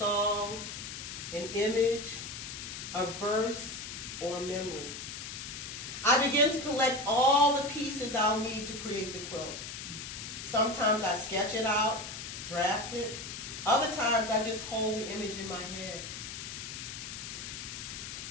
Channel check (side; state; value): left; noise; hiss, 8 dB below the sound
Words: an image, a verse, or a memory. I begin to collect all the pieces I'll need to create the quilt. Sometimes I sketch it out, draft it. Other times I just hold the image in my head.